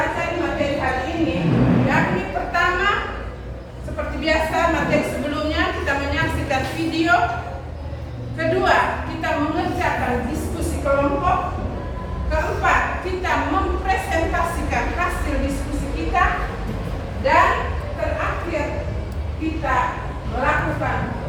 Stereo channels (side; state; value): both; identical; correlation 1.00